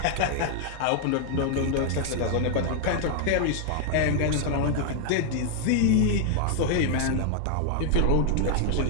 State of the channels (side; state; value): both; different; correlation 0.00